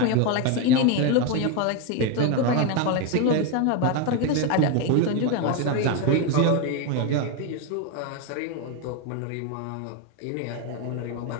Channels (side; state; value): both; different; correlation 0.02